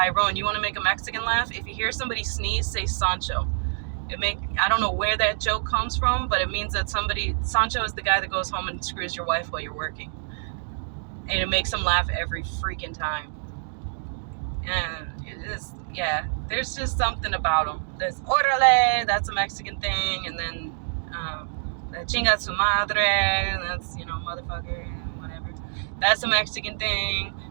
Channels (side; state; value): left; silent; digital silence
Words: You want to make a Mexican laugh? If you hear somebody sneeze, say Sancho. I don't know where that joke comes from, but it means that Sancho is the guy that goes home and screws your wife while you're working. And it makes them laugh every freaking time. And it is, yeah, there's just something about them. There's Orale, that's a Mexican thing, and then Chinga su madre, that's, motherfucker, whatever. That's a Mexican thing.